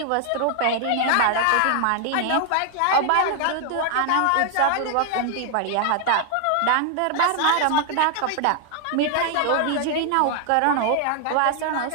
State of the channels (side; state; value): both; different; correlation 0.00